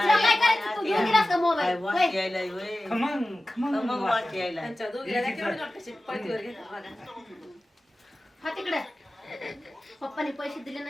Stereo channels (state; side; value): normal; both; correlation 0.96